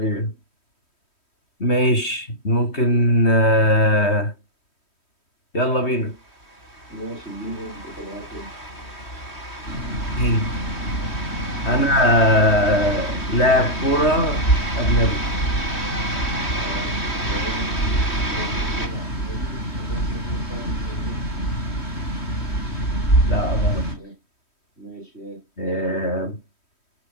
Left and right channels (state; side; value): late; right; 3.1 ms